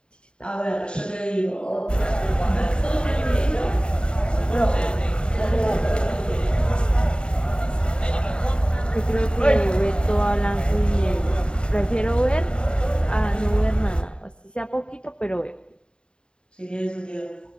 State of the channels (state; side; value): late; right; 0.051 ms